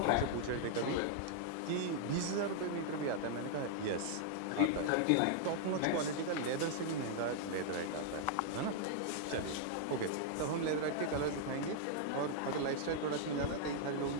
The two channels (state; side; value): different; both; correlation -0.01